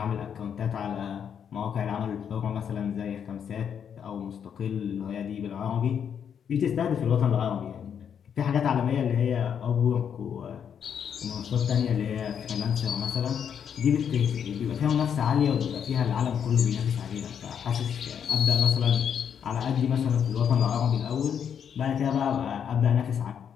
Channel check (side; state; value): right; quieter; 8.0 dB